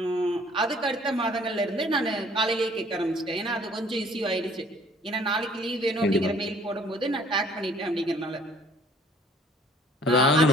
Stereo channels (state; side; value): normal; both; correlation 0.56